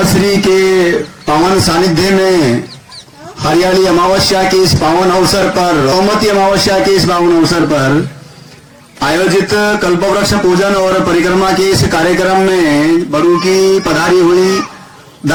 श्री के पावन सानिध्य में हरियाली अमावस्या के इस पावन अवसर पर, सोमवती अमावस्या के इस पावन अवसर पर आयोजित कल्पवृक्ष पूजन और परिक्रमा के इस कार्यक्रम में बड़ू की पधारी हुई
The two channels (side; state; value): both; identical; correlation 1.00